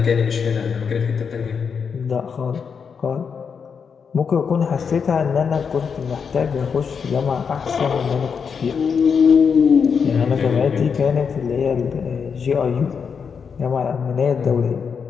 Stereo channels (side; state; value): right; quieter; 6.3 dB